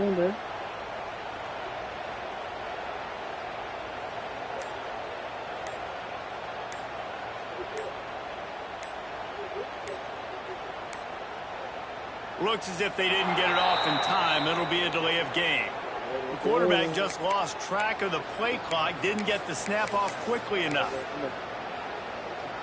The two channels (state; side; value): identical; both; correlation 1.00